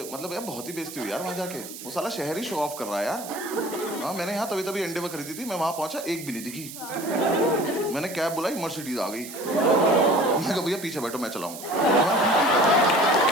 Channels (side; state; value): right; noise; hiss, 12 dB below the sound